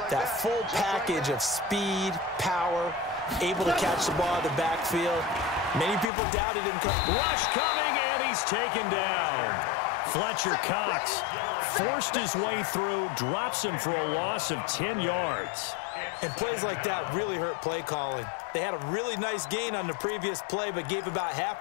that full package of speed, power, able to catch the ball in the backfield. Many people doubted him. Rush coming, and he's taken down. Fletcher Cox forced his way through, drops him for a loss of 10 yards. And plays like that really hurt play calling. They had a really nice gain on the previous play, but gave about half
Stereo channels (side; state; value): right; drops out; at 6.1 s